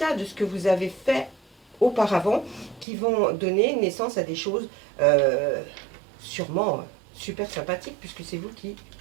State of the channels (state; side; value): drops out; left; at 2.9 s